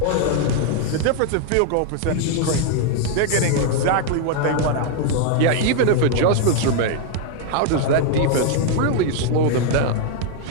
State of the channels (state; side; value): different; both; correlation 0.00